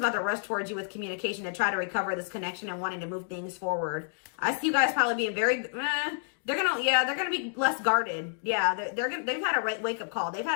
about to rush towards you with communication and try to recover this connection and wanting to move things forward. I see you guys probably being very, they're gonna be less guarded. Yeah, they've had a wake up call. They've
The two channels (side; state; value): right; silent; digital silence